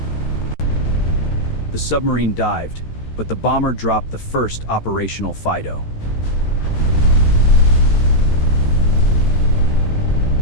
The submarine dived, but the bomber dropped the first operational FIDO.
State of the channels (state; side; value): late; right; 13 ms